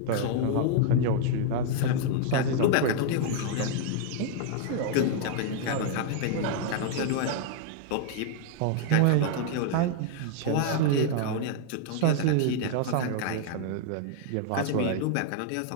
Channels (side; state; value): both; different; correlation 0.00